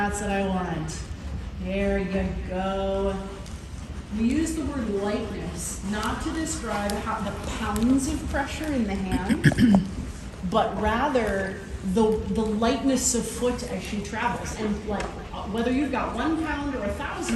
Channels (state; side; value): identical; both; correlation 1.00